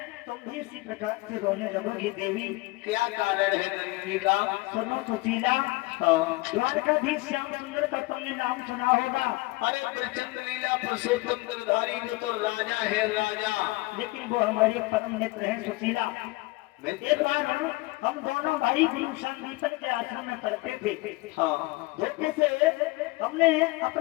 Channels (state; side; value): quieter; right; 22.3 dB